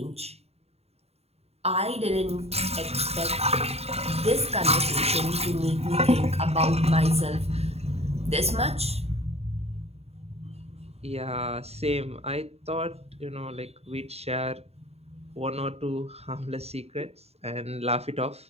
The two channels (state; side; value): late; left; 0.30 ms